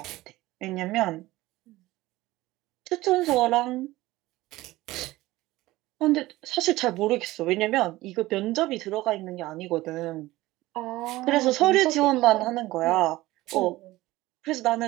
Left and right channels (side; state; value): left; quieter; 18.0 dB